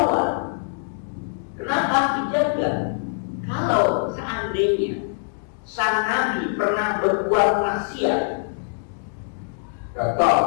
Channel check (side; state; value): right; silent; digital silence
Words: Kenapa dijaga? Kalau seandainya sang Nabi pernah berbuat maksiat, contoh,